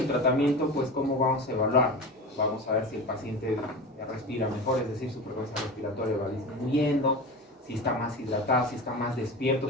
tratamiento, pues, ¿cómo vamos a evaluar? Vamos a ver si el paciente respira mejor, es decir, su frecuencia respiratoria va disminuyendo, si está más hidratado, si está más despierto,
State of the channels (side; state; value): both; normal; correlation 0.29